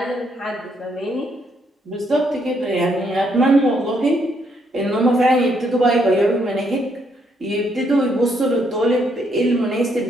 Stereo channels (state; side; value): normal; both; correlation 0.73